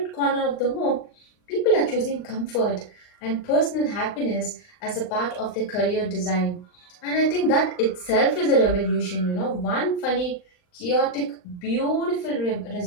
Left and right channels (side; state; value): right; late; 39 ms